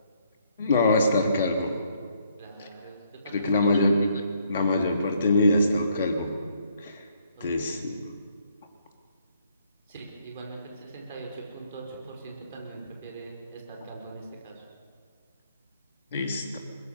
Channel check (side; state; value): both; inverted; correlation -0.69